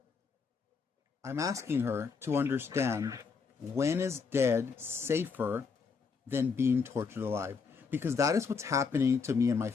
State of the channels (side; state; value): right; quieter; 5.3 dB